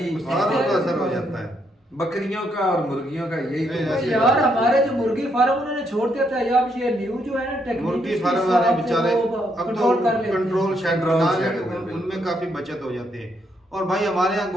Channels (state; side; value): normal; both; correlation 0.75